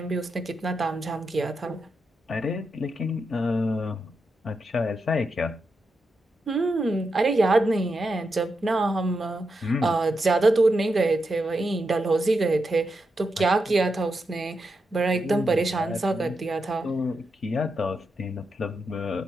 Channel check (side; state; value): both; normal; correlation 0.86